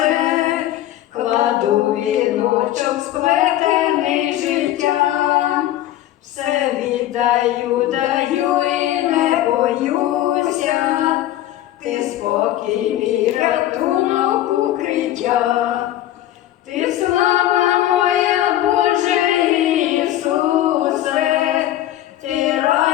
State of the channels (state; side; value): quieter; right; 13.6 dB